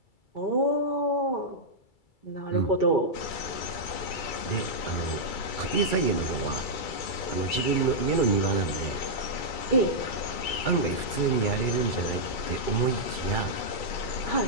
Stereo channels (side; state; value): right; late; 2.3 ms